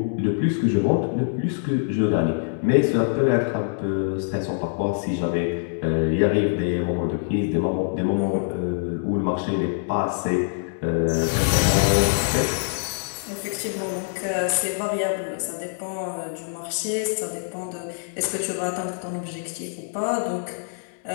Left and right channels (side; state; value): right; silent; 62 dB below the other